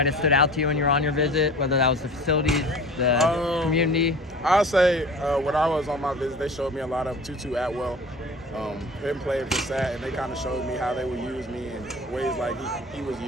have stood out to you when you were on your visit, whether that was the facilities, the community? I'll say when I was on my visit, they showed me a lot of Tutu Atwell. Him playing for SAT, and they kind of showed me how they would use me in ways like he was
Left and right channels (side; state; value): both; normal; correlation 0.40